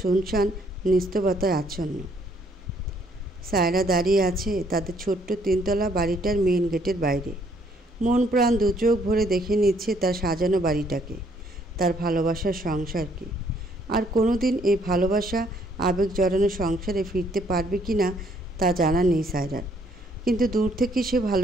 শুনশান, নিস্তব্ধতায় আচ্ছন্ন। সায়রা দাঁড়িয়ে আছে তাদের ছোট্ট 3তলা বাড়িটার মেইন গেটের বাইরে। মন প্রাণ দু চোখ ভরে দেখে নিচ্ছে তার সাজানো বাড়িটাকে, তার ভালোবাসার সংসারকে। আর কোনোদিন এই ভালোবাসা আবেগ জড়ানো সংসারে ফিরতে পারবে কি না তা জানা নেই সায়রার। কিন্তু দূর থেকে সে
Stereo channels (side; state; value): both; normal; correlation 0.67